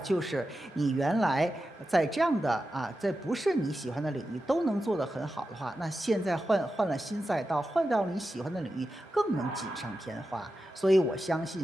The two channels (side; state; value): both; normal; correlation 0.91